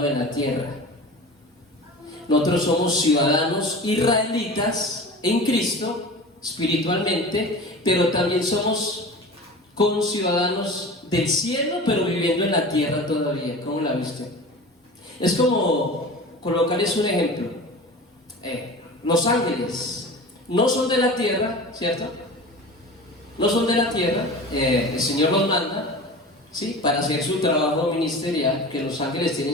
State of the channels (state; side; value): normal; both; correlation 0.36